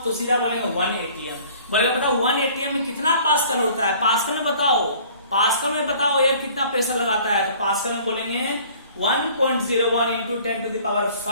तो सीधा बोलेंगे 1 एटीएम। बोलेगा बताओ 1 एटीएम में कितना पास्कल होता है, पास्कल में बताओ, पास्कल में बताओ एयर कितना प्रेशर लगाता है। तो पास्कल में बोलेंगे 1.01 इंटू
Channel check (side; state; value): both; inverted; correlation -0.52